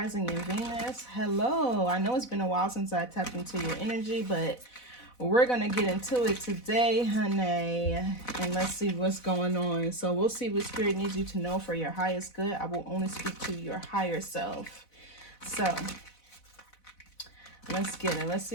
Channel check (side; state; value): right; late; 4.0 ms